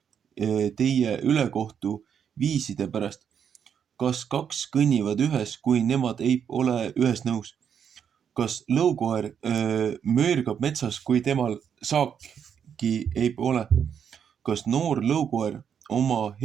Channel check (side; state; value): left; quieter; 7.9 dB